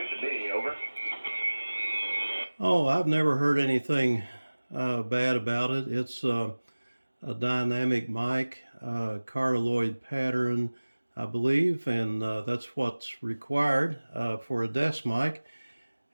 to me. Over. Oh, I've never heard anything bad about it. It's a dynamic mic, cardioid pattern, I believe, and that's what's required for a desk mic.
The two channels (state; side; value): inverted; both; correlation -1.00